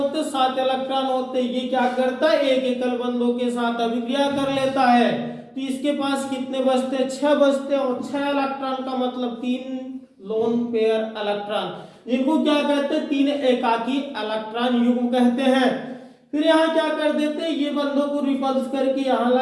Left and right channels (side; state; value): both; identical; correlation 1.00